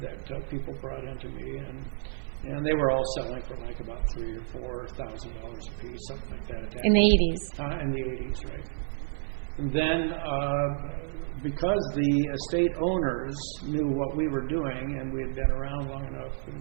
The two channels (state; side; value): silent; left; digital silence